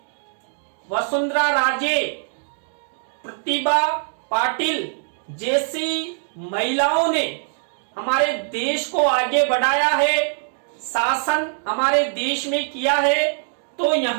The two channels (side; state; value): left; silent; digital silence